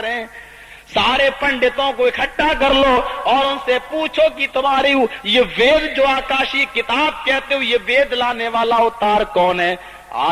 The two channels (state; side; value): identical; both; correlation 1.00